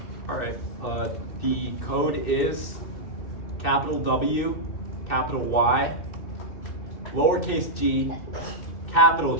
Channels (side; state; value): right; late; 2.6 ms